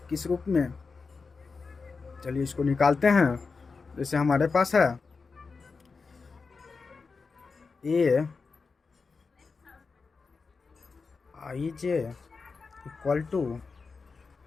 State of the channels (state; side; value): quieter; right; 4.6 dB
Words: किस रूप में, चलिए इसको निकालते हैं। जैसे हमारे पास है A I J equal to